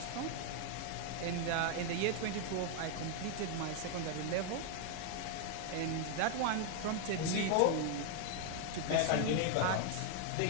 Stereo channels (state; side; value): different; both; correlation 0.00